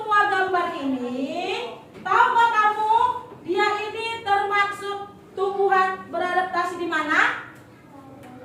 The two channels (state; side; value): identical; both; correlation 1.00